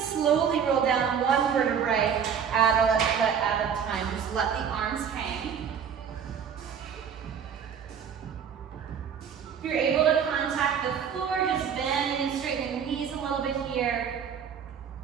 slowly roll down 1 vertebrae at a time. Just let the arms hang. If you're able to contact the floor, just bending and straightening the knees a little bit here.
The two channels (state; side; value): quieter; left; 7.5 dB